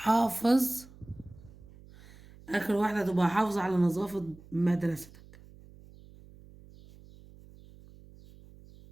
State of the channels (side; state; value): right; noise; hum, 22 dB below the sound